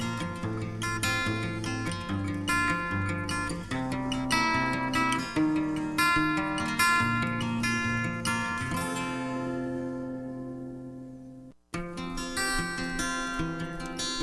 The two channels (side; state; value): both; identical; correlation 1.00